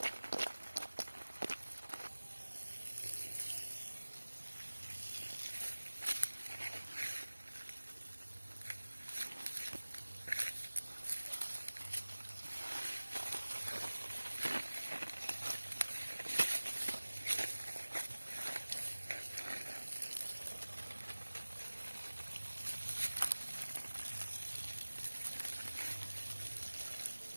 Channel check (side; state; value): both; inverted; correlation -1.00